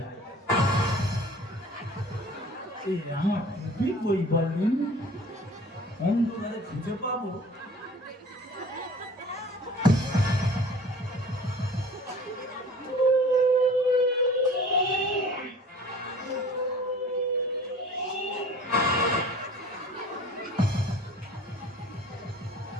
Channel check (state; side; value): normal; both; correlation 0.46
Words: এই আমার টুপি বই বলুন, অন্ধকারে খুঁজে পাবো?